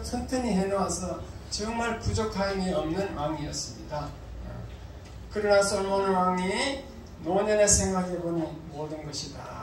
튼튼히 해놓아서 정말 부족함이 없는 왕이었습니다. 그러나 솔로몬 왕이 노년에 생각해보니 모든 것이 다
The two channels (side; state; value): both; identical; correlation 1.00